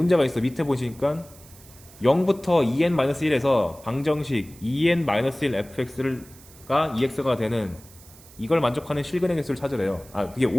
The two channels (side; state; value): right; noise; hiss, 22 dB below the sound